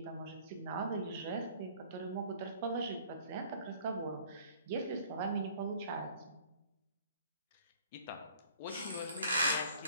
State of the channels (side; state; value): both; inverted; correlation -0.54